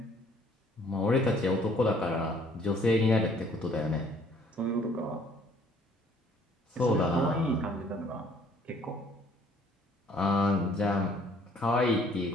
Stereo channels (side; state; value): both; normal; correlation 0.59